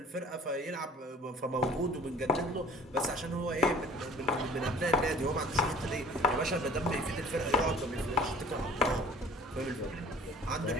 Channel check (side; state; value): both; normal; correlation 0.49